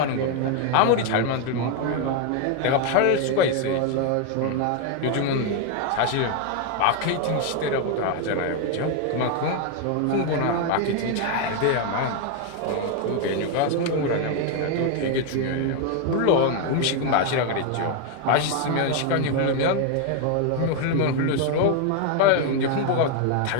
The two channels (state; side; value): different; both; correlation 0.01